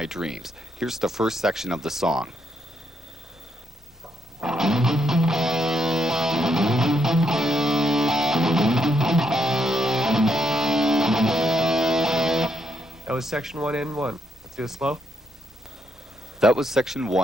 Dreams. Here's the first section of the song. That was section 1 and 1. Let's do it slow. That was section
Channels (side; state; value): both; normal; correlation 0.77